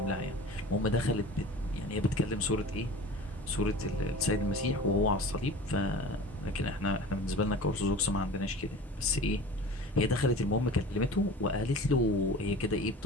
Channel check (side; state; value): both; normal; correlation 0.39